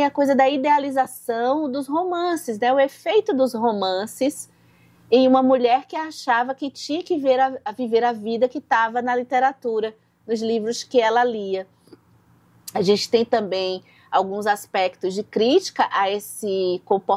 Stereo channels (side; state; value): both; identical; correlation 1.00